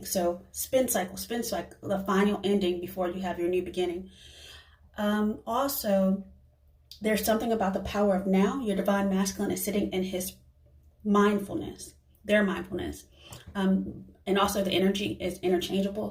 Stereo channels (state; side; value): identical; both; correlation 1.00